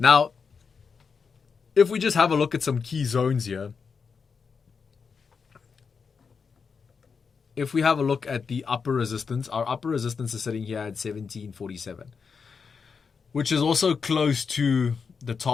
if we just have a look at some key zones here, if we have a look at the upper resistance, our upper resistance is sitting here at 1747, which is also close to the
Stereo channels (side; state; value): right; quieter; 5.6 dB